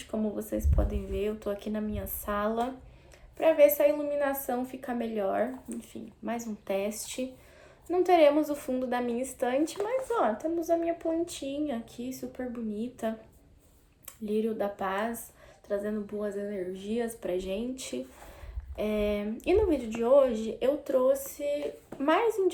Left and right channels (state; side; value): identical; both; correlation 1.00